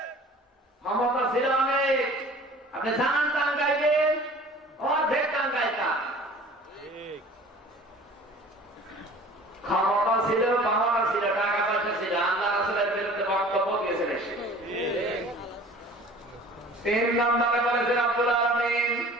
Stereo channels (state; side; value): normal; both; correlation 0.46